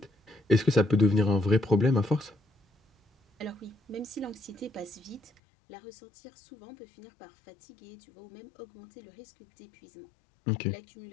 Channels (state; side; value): drops out; right; at 5.4 s